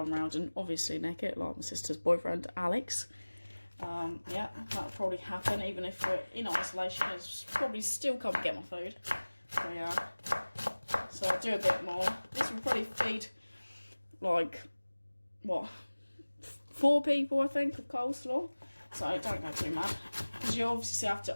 around and obviously nick it, like my sister's boyfriend Alex. Yeah, that'll probably happen even if we're in isolation. It's probably still come and get my food. So yeah, so I'll do a bit more. This will probably feed like, what, 4 people I think of coleslaw. So don't go too mad, because you obviously have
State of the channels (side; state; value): both; inverted; correlation -1.00